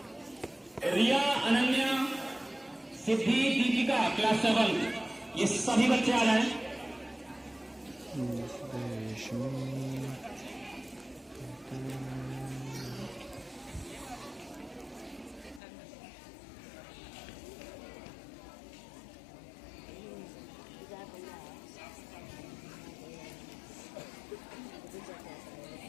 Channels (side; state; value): right; drops out; at 15.6 s